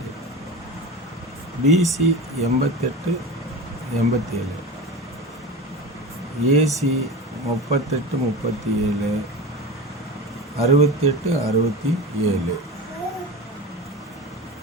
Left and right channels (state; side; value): normal; both; correlation 0.28